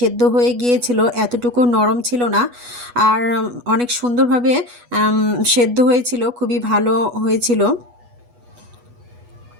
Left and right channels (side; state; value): left; late; 8.2 ms